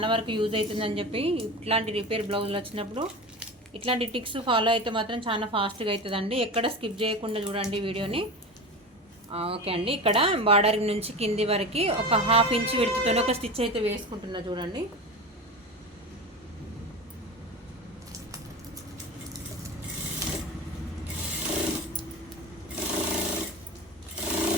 వరకు యూజ్ అవుతుందని చెప్పి, ఇట్లాంటి రిపేర్ బ్లౌజులు వచ్చినప్పుడు ఇట్లాంటి టిక్స్ ఫాలో అయితే మాత్రం చాలా ఫాస్ట్గా అవుతుందండి. ఎక్కడ స్కిప్ చేయకుండా చూడండి వీడియోని. ఓకే అండి, ఇక్కడ బార్డర్ నుంచి కింది వరకు ఒక 1/2 ఇంచ్ విడుతుతో ఒక స్టిచ్ అయితే వేసుకుంటున్నా చూడండి.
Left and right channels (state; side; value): normal; both; correlation 0.28